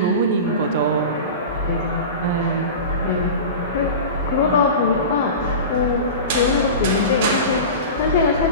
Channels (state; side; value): inverted; both; correlation -0.31